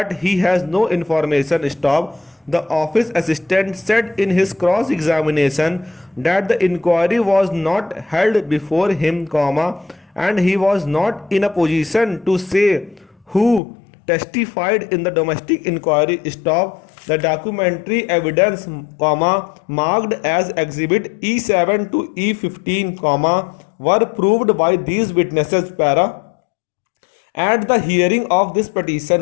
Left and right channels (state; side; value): drops out; right; at 13.6 s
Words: he has no information. Stop. The office assistant said in his cross examination that the inquiry was not held before him, and he was not in a position to say who testified in the domestic inquiry. Stop. The documentary evidence, marked as exhibit E7 to E15, were proved by these witnesses. At the hearing of this